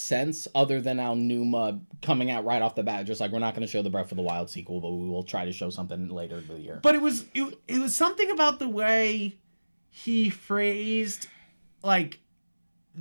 other than Aonuma coming out right off the bat, just like, we're not going to show the Breath of the Wild sequel, but we will try to show something later in the year. But it was something about the way he phrased like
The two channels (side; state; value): both; inverted; correlation -1.00